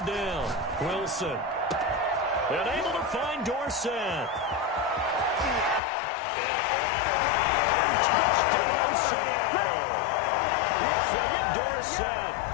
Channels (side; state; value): right; drops out; at 5.8 s